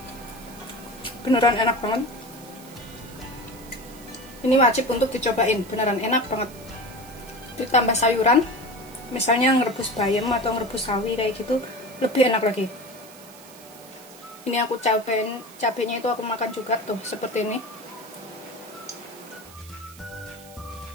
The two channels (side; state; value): right; noise; hiss, 20 dB below the sound